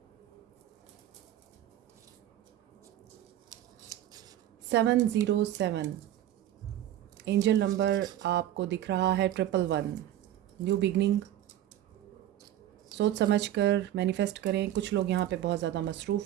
सेवन 707 एंजल नंबर आपको दिख रहा है 111। न्यू बिगनिंग, सोच समझ कर मैनिफेस्ट करें। कुछ लोग यहाँ पे बहुत ज़्यादा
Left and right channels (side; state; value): left; quieter; 12.3 dB